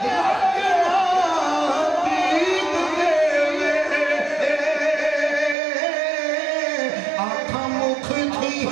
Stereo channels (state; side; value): drops out; left; at 5.6 s